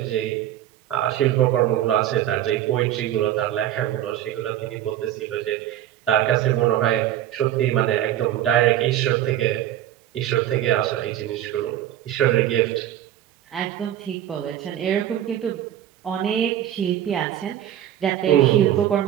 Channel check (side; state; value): left; quieter; 11.9 dB